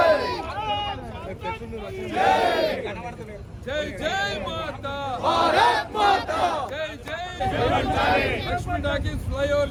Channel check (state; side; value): identical; both; correlation 1.00